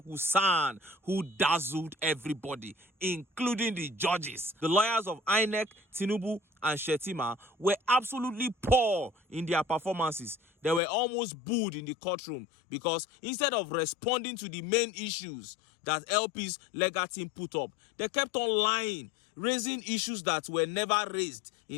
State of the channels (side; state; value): right; drops out; at 10.8 s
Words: who dazzled everybody, including the judges. The lawyers of INEC, TINUBU, and Shetima were absolutely poor in their performances. They were almost booed in the courtroom because instead of responding to the main issues that LP's legal team put up, they kept on lying, raising issues that were never raised